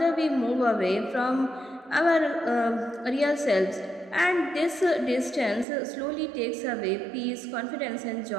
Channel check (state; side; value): drops out; left; at 5.7 s